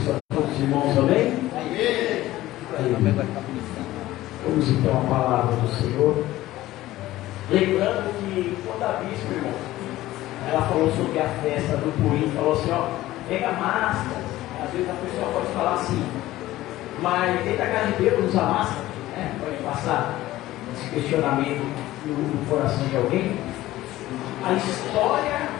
a todos os irmãos, amém? Vamos então à palavra do Senhor. Lembrando que quando a bispa, irmão, ela falou sobre a festa do Purim, falou assim, ó, pega máscara. Às vezes a pessoa pode falar assim, mas dentro da casa de Deus usa máscara, né? Pode passar esse questionamento no coração de alguém. A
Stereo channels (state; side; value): quieter; right; 16.0 dB